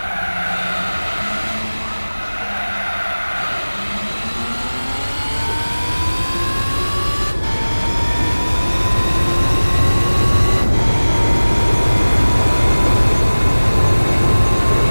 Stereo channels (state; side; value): inverted; both; correlation -1.00